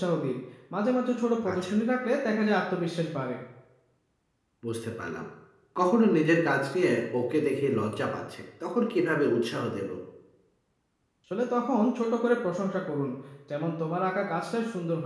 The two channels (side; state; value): both; identical; correlation 1.00